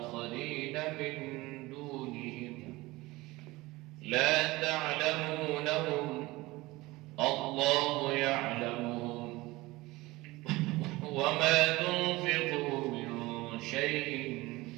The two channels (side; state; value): left; quieter; 20.5 dB